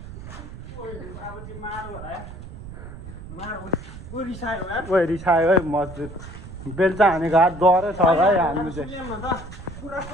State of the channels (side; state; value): right; noise; rumble, 13 dB below the sound